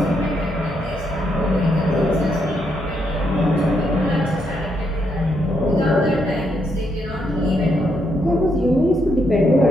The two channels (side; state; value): both; normal; correlation 0.77